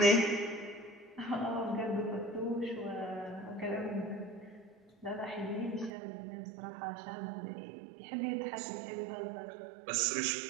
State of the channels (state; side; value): drops out; left; at 5.9 s